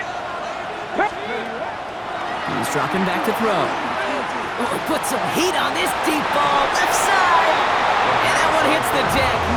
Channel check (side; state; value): both; identical; correlation 1.00